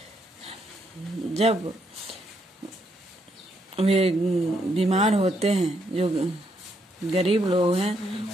जब वे बीमार होते हैं, जो गरीब लोग हैं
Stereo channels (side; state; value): both; normal; correlation 0.76